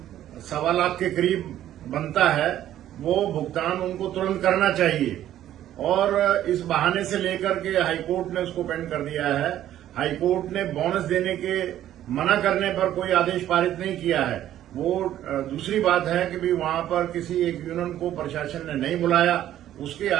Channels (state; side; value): quieter; left; 12.2 dB